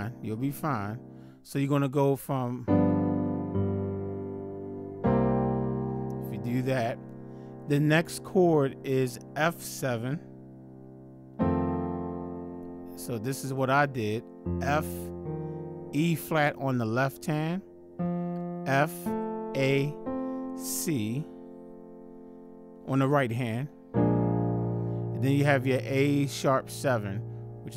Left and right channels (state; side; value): identical; both; correlation 1.00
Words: You'll be fine. So you're gonna go from. If do that. The next chord is F7. So this is what I did. F, E flat on the left hand, F, A, C on the right hand. And then you have your A sharp 7, which